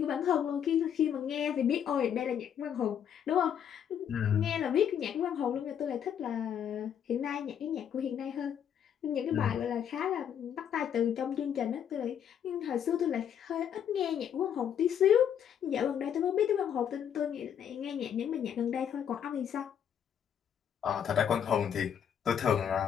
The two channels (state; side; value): quieter; right; 8.8 dB